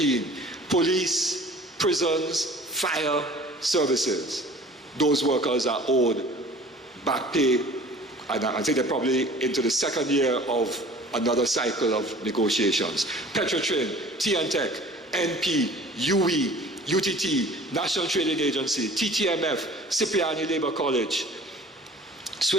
Police, prisons, fire services. Those workers are owed back pay, and I think they're probably into the second year of another cycle of negotiations. Petrotrin, T&Tech, NP, UE, UTT, National Trading Agency, TTMF, Cipriani Labour College,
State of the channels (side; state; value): both; normal; correlation 0.46